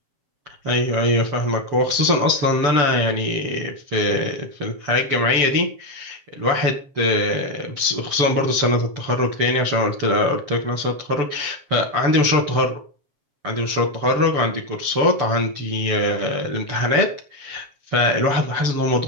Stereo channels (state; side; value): late; left; 7.4 ms